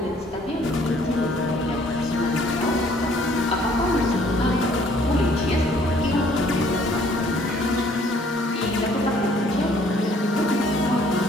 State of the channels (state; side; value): normal; both; correlation 0.60